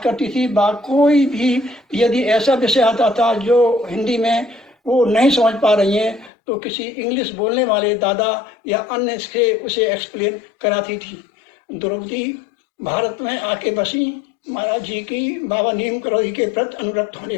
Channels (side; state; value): right; drops out; at 6.3 s